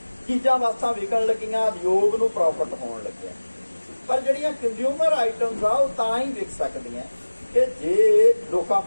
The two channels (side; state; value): both; inverted; correlation -1.00